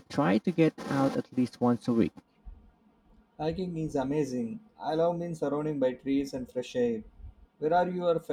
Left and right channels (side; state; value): both; identical; correlation 1.00